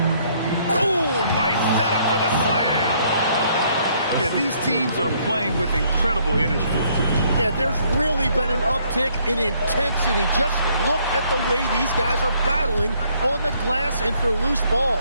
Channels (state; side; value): inverted; both; correlation -0.66